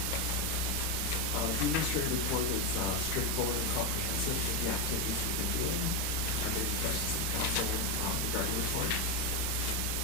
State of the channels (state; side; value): late; right; 31 ms